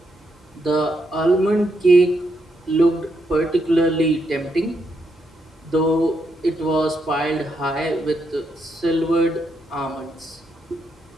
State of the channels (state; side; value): normal; both; correlation 0.80